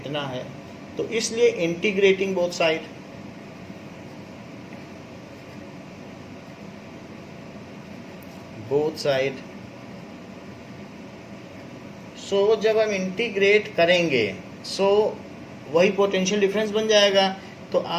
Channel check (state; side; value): identical; both; correlation 1.00